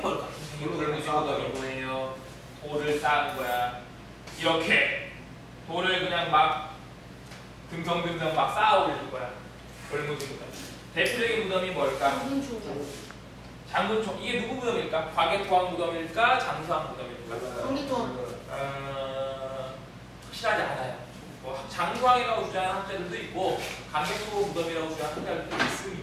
돌무진 무덤이 뭐예요? 돌을 쌓은 거야. 이렇게 돌을 그냥 막 듬성듬성 막 쌓아 올릴 거야. 돌무진 무덤. 대표적인 무덤이 뭘까? 장군총. 이게 누구 무덤일까? 과개토왕 무덤일까? 장수왕 무덤일까? 장기토왕. 확실하지 않아요. 뭐 장수왕이라고 주장하는 학자들도 있고 강개토 무덤이라고 주장하는 학자들도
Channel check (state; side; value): identical; both; correlation 1.00